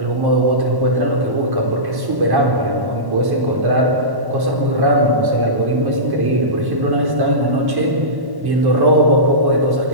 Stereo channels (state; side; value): late; left; 1.1 ms